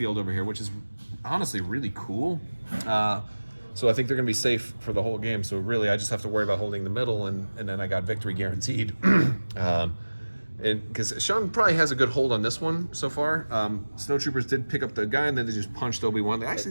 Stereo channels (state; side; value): inverted; both; correlation -1.00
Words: over here, which is honestly really cool. So I think they're going to be safe for the whole game. So really, I just have to worry about holding the middle, and then I got victory guaranteed. Because Sean probably has a good hold on this one so far. Snowtroopers did pick up the guy, and then they just punched Obi-Wan. They